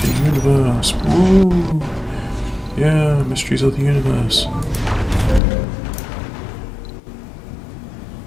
the universe. Woo! Yeah, mysteries of the universe.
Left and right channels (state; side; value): drops out; right; at 5.4 s